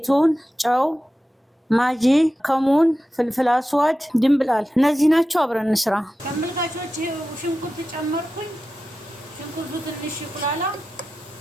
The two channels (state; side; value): normal; both; correlation 0.93